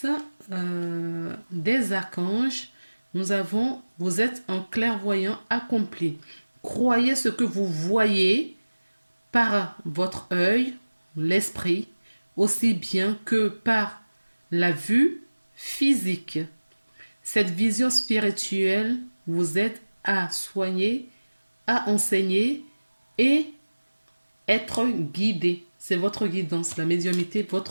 des archanges. Nous avons, vous êtes un clairvoyant accompli. Croyez ce que vous voyez par votre œil, l'esprit, aussi bien que par la vue physique. Cette vision spirituelle vous aide à soigner, à enseigner et être guidé. C'est votre guidance. La médiumnité,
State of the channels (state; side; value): inverted; both; correlation -1.00